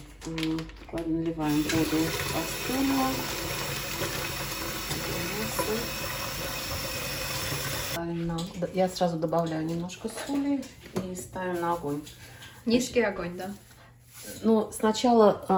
Наливаем воду кастрюлю. Я сразу добавляю немножко соли и ставим на огонь. Низкий огонь, да? Ну,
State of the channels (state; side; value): identical; both; correlation 1.00